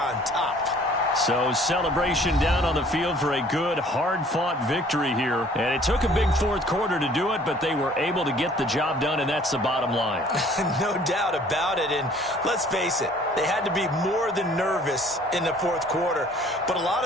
top. So celebration down on the field for a good, hard-fought victory here. And it took a big fourth quarter to do it, but they were able to get the job done, and that's the bottom line. No doubt about it. And let's face it, they had to be more than nervous in the fourth quarter. But a lot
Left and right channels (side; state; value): both; normal; correlation 0.55